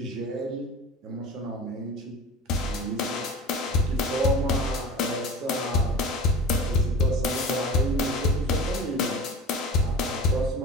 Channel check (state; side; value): normal; both; correlation 0.35